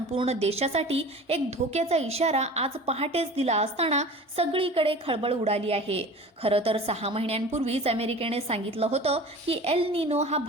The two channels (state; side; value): normal; both; correlation 0.39